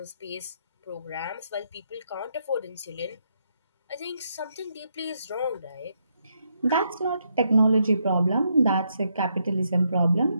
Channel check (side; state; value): both; inverted; correlation -0.78